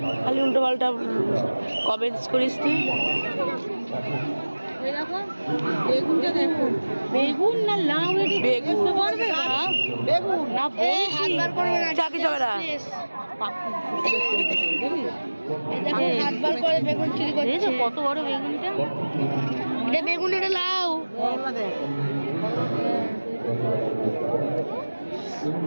খালি উল্টো পাল্টা কমেন্টস করিস তুই। দেখো বেগুনটা, দেখো বেগুন না লাউ? বেগুন করবে বেগুন না, হাতবার করবে না, চাকি চলে না। হাতবার করে বেগুন চুরি করছে। কত বড় বেগুনটা, এটা বেগুন, এটা লাউ।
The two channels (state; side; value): inverted; both; correlation -1.00